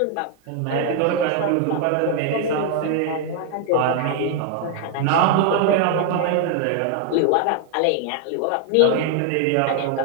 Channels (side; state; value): both; different; correlation 0.00